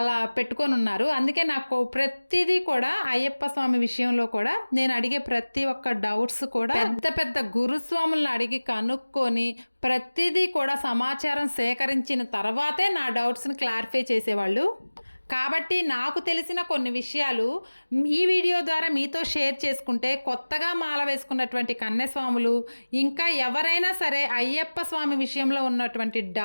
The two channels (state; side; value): inverted; both; correlation -1.00